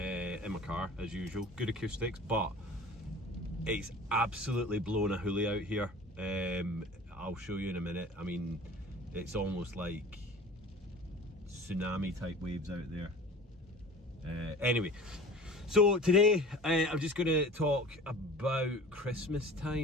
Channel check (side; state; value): both; normal; correlation 0.41